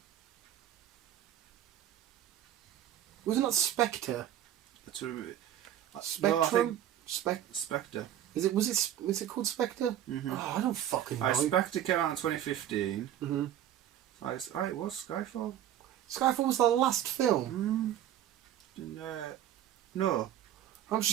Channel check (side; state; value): left; quieter; 11.3 dB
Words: Wasn't that Spectre? Spectrum? Spectre. Was it called Spectre? Mm-hmm. Oh, I don't fucking know. Spectre came out in 2015. Mm-hmm. It was Skyfall. Skyfall was the last film. No. I'm